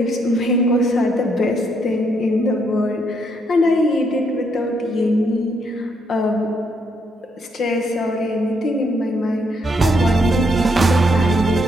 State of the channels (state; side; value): normal; both; correlation 0.74